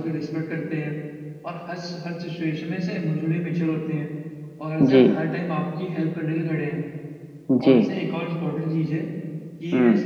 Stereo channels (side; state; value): both; identical; correlation 1.00